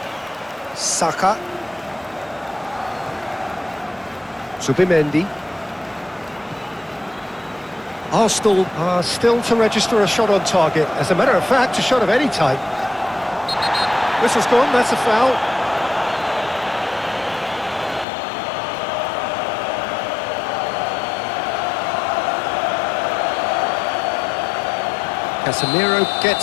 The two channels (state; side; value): drops out; right; at 18.1 s